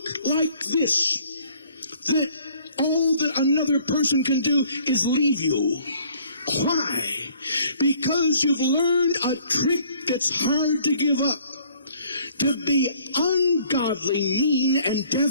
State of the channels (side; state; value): both; inverted; correlation -0.59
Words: like this, that all that another person can do is leave you. Why? Because you've learned a trick that's hard to give up. To be ungodly, mean, and